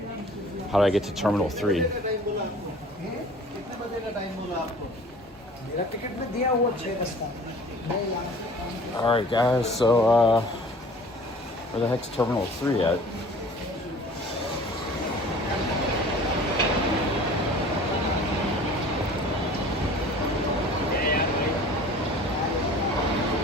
How do I get to Terminal 3? Alright guys, so where the heck's Terminal 3 at?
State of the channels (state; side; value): normal; both; correlation 0.46